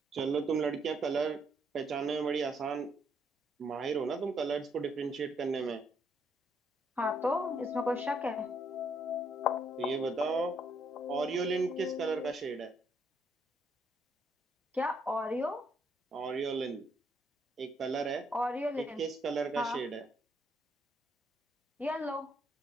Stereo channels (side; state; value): both; normal; correlation 0.72